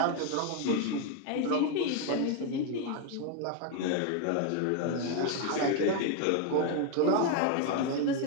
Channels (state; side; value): different; both; correlation 0.01